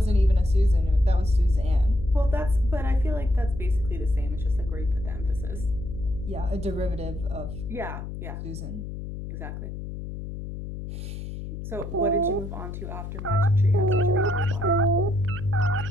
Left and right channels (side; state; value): left; noise; hum, 8 dB below the sound